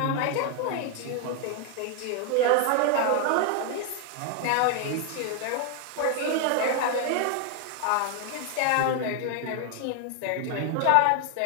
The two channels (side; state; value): both; different; correlation 0.00